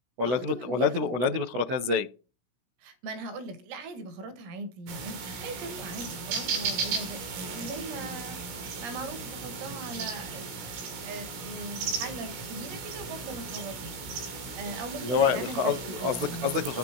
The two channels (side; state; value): left; late; 17 ms